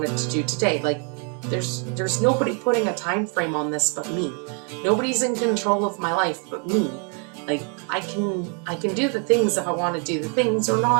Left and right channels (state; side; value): quieter; left; 38.1 dB